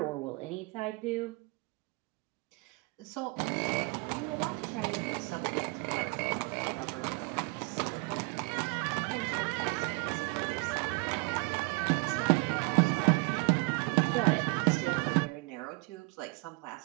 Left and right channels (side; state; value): left; quieter; 29.4 dB